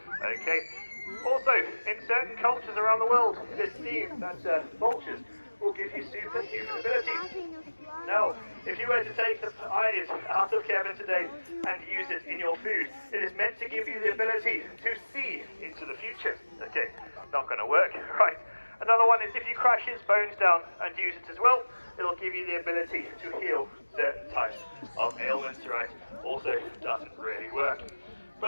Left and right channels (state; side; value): inverted; both; correlation -1.00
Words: Okay, also in certain cultures around the world it is seen that vultures will give you superhuman abilities. Now, if you were to take the eyes out of Kevin today and use it in your food, it is meant to give you the ability to see into the future. Okay, not going to work, right? Another one is if you crash his bones down and use it as well, it'll give you the ability to heal certain types of ailments, right? Also doesn't really work.